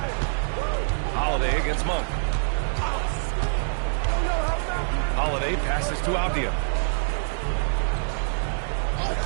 Holiday against Monk. Holiday passes to Apia.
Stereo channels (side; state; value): left; silent; digital silence